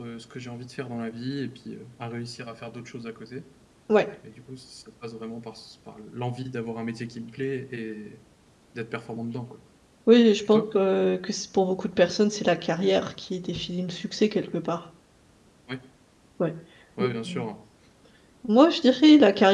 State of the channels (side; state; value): both; identical; correlation 1.00